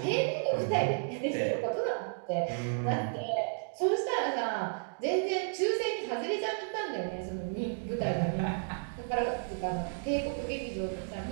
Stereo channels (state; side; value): silent; left; digital silence